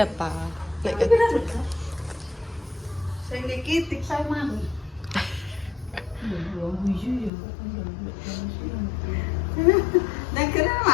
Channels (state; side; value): drops out; right; at 7.3 s